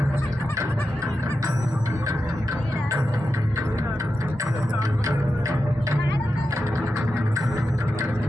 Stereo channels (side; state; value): both; normal; correlation 0.90